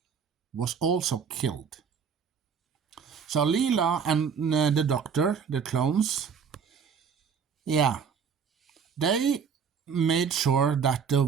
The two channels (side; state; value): left; quieter; 6.6 dB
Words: was also killed. So Leela and the doctor, the clones, they made sure that the